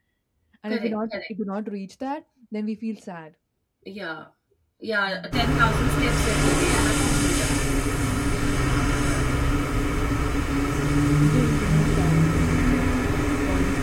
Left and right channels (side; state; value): both; identical; correlation 1.00